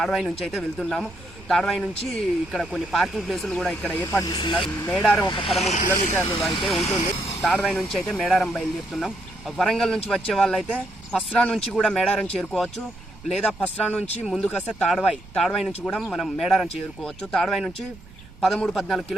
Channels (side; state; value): right; noise; rumble, 20 dB below the sound